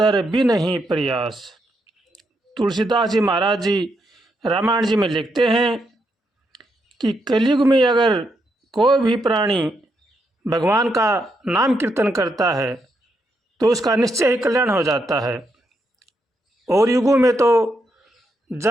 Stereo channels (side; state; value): both; normal; correlation 0.80